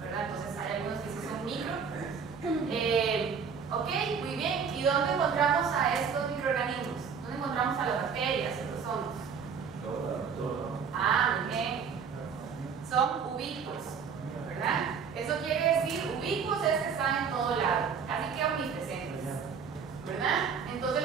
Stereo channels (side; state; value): left; quieter; 6.3 dB